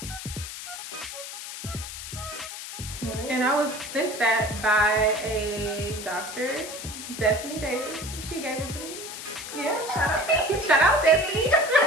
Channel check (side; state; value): left; noise; hiss, 9 dB below the sound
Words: Really? And I was sent that by a doctor, Destiny Davis. She gave it to me. Yeah, shout out Destiny.